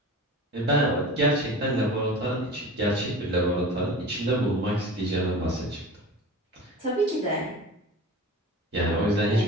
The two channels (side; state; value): both; normal; correlation 0.36